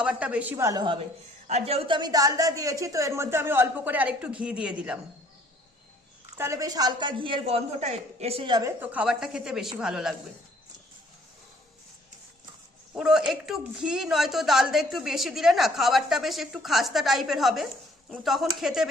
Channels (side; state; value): both; normal; correlation 0.60